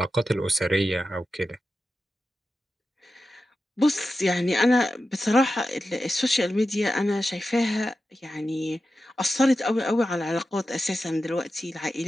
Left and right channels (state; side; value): normal; both; correlation 0.92